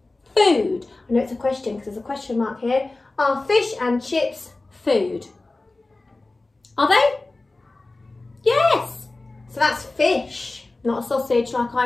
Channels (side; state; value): right; quieter; 3.2 dB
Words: food? I know it's a question because there's a question mark here. Are fish and chips food? Are they? Yes. So that's fish, not a sausage like